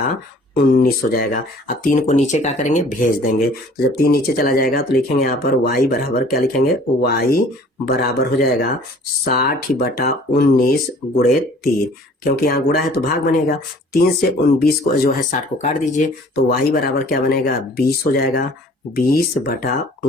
हो जाएगा। अब 3 को नीचे क्या करेंगे, भेज देंगे। तो जब 3 नीचे चला जाएगा तो लिखेंगे यहाँ पर y बराबर क्या लिखेंगे, y बराबर हो जाएगा 60/19 गुणे 3, क्योंकि यहाँ गुणा है तो भाग बनेगा। 3 से 19 को जो है 60 को काट दीजिए तो y बराबर क्या बनेगा, 20 हो जाएगा।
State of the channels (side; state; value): both; normal; correlation 0.52